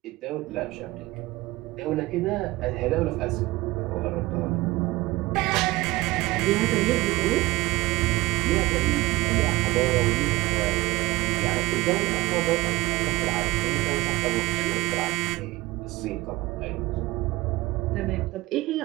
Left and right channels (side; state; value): left; quieter; 19.5 dB